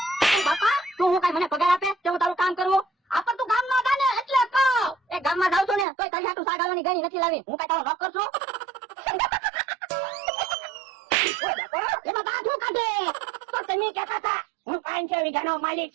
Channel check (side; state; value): left; drops out; at 5.9 s